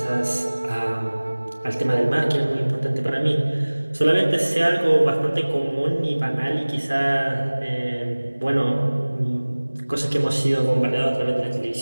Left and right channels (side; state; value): both; inverted; correlation -1.00